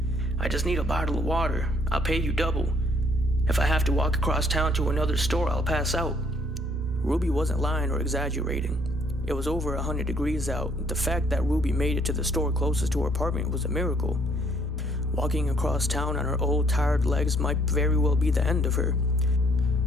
"I just need a bottle of water. I'll pay you double. If I have to walk across town to another store, I'll pass out." Ruby wasn't lying or exaggerating. It was over 100 degrees out. The fact that Ruby made it to the store closest to her apartment was a miracle. Walking across town on her old, tired legs might very well be the end of her.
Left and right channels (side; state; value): both; normal; correlation 0.65